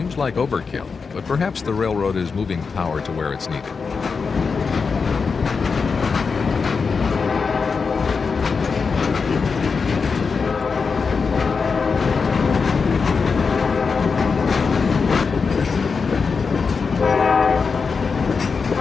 like overkill, but perhaps the railroad is moving power to where it's needed.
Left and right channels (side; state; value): right; quieter; 5.1 dB